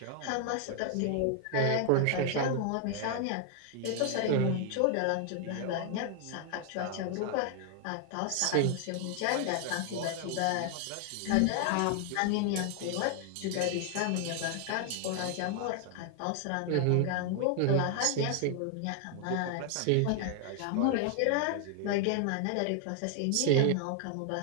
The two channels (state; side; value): different; both; correlation 0.00